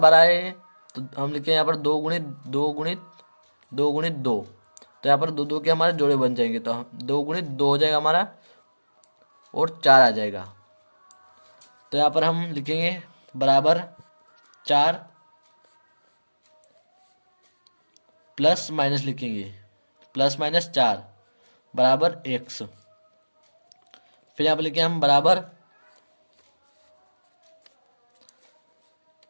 आए हैं तो हम लिखें यहाँ पर 2 गुणित 2 गुणित 2 गुणित 2। तो यहाँ पर 2 2 के हमारे जोड़े बन जाएंगे तो 2 गुणित 2 हो जाएगा हमारा और 4 आ जाएगा। तो यहाँ पर हम लिखेंगे बराबर 4 प्लस माइनस लिखेंगे, प्लस माइनस 4 बराबर एक्स। फिर यहाँ पर लिखेंगे हम बराबर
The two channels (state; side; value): inverted; both; correlation -1.00